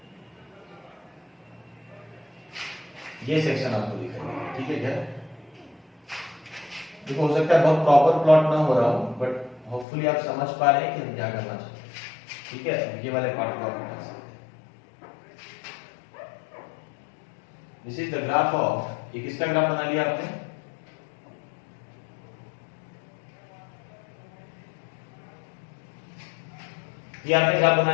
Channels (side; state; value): right; drops out; at 9.9 s